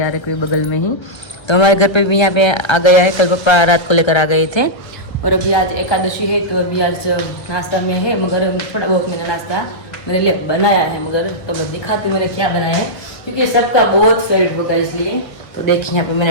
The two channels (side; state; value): right; late; 1.3 ms